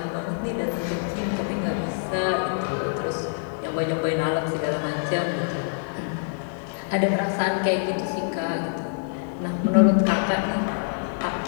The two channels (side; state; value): right; silent; digital silence